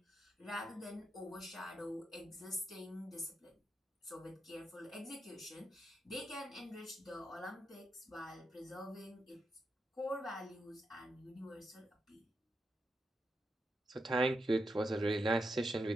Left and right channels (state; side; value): normal; both; correlation 0.84